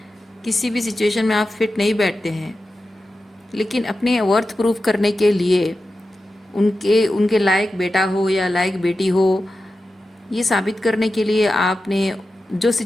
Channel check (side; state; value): both; normal; correlation 0.92